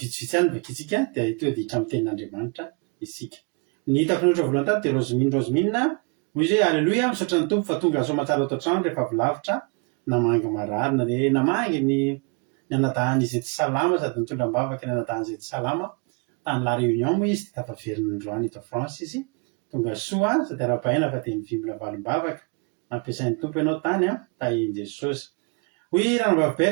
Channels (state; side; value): quieter; left; 33.5 dB